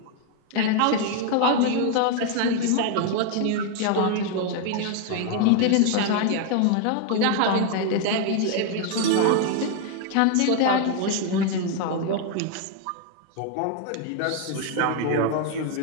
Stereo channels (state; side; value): different; both; correlation 0.00